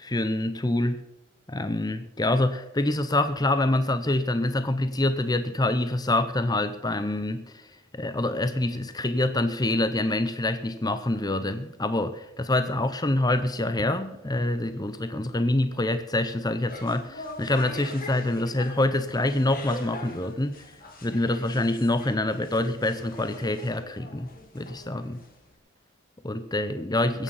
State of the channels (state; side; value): normal; both; correlation 0.66